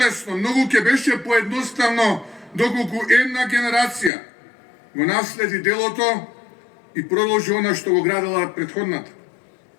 многу ќе беше поедноставно доколку една генерација го наследи делото и продолжи она што го градела предходната.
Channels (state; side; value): drops out; right; at 4.1 s